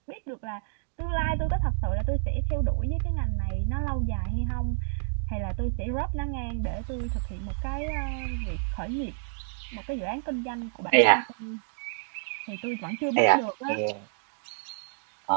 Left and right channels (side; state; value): left; silent; digital silence